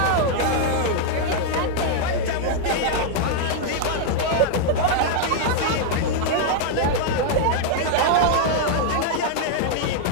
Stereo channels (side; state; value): both; different; correlation -0.01